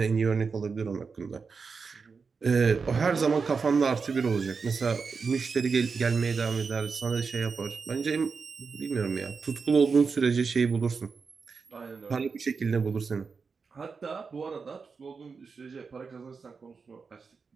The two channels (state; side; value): quieter; left; 5.1 dB